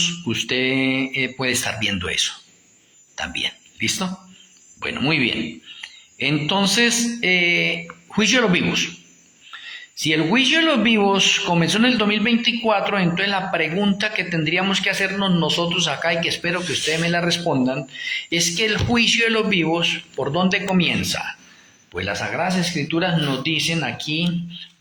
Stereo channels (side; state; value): both; identical; correlation 1.00